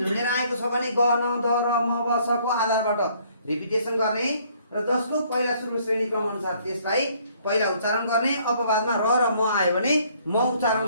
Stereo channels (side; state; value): both; inverted; correlation -0.63